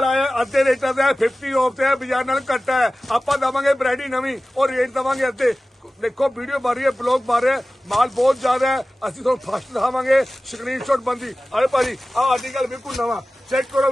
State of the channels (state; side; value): normal; both; correlation 0.96